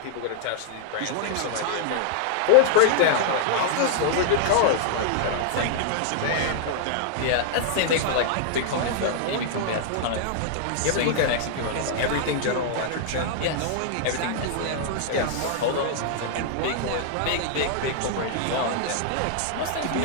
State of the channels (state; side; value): different; both; correlation -0.01